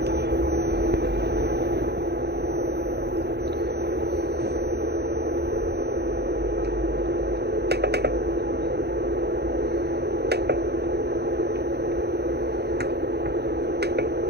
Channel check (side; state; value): left; late; 0.48 ms